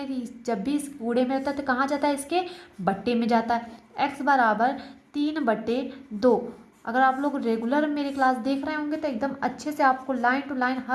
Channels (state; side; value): identical; both; correlation 1.00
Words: कि जब भी इस गुणे में होता है तो कहाँ जाता है, इसके बट्टे में जाता है। x बराबर 3/2। अगर आप लोग रेगुलर मेरी क्लास देख रहे होंगे तो एकदम अच्छे से आपको लाइन टू लाइन